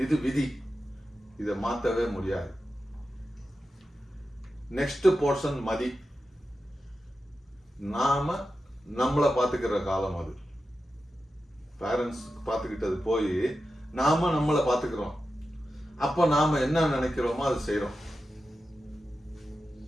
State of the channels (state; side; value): normal; both; correlation 0.91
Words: இது விதி, இதை மாற்றவே முடியாது. நெக்ஸ்ட் போர்ஷன் மதி, நாம நம்மளை பார்த்துக்கிற காலம். அது பேரண்ட்ஸ் பார்த்துக்கிட்டது போய் நாம நம்மளை பார்த்துக்கிறோம். அப்போ நாம என்ன நினைக்கிறோமோ அது செய்யறோம்.